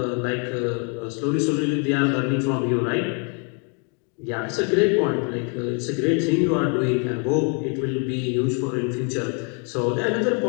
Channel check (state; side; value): quieter; right; 38.3 dB